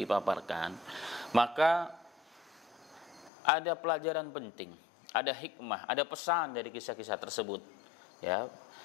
maka ada pelajaran penting, ada hikmah, ada pesan dari kisah-kisah tersebut. Ya,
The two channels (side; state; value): right; drops out; at 3.3 s